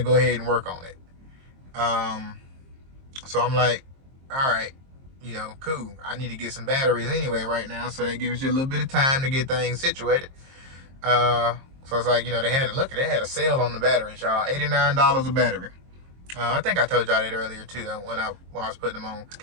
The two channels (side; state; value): left; late; 22 ms